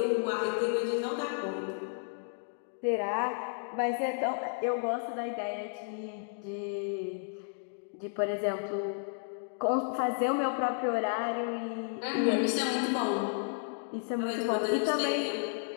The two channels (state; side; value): silent; right; digital silence